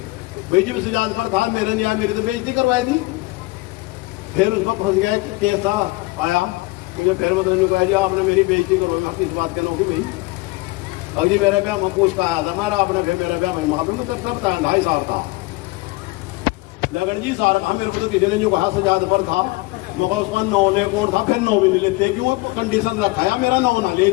भाई जब सिजाद पर था मेरे यहाँ मेरी तो बेइज्जती करवाई थी। फिर उसमें फंस गया केस था आया, मुझे फिर मतलब कहा जी आपने मेरी बेइज्जती करवाई, मैं किस बात कहना होगी भाई, अब जी मेरे ब्याह में पूछ का आया था मारा आपने, फिर मेरा ब्याह में मैं करता 2.5 साल था लगन जी सारा कहा, मेरे को तो किसी ने जो कहा सजाद पर था, मगर उसका 9 ने कौन था, फिर 9 भी नहीं लेते क्यों, कंडीशन रखा है मेरा 9 ना ले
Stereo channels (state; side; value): quieter; right; 22.6 dB